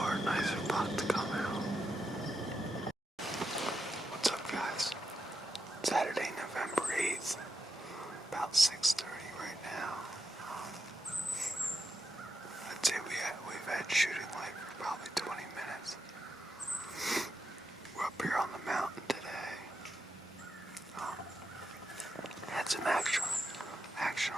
or a nicer buck to come out. What's up, guys? Saturday, November 8th. About 6:30 right now. I'd say we've had shooting light for probably 20 minutes. We're up here on the mountain today. Had some action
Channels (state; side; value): normal; both; correlation 0.85